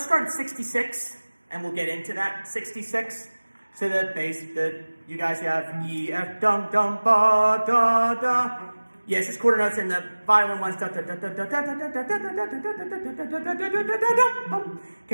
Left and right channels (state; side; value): inverted; both; correlation -1.00